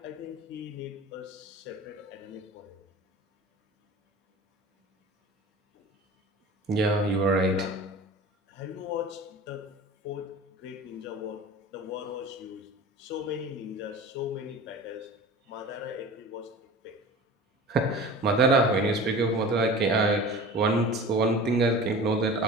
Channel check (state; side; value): normal; both; correlation 0.37